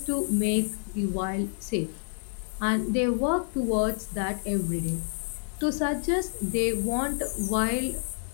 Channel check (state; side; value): silent; right; digital silence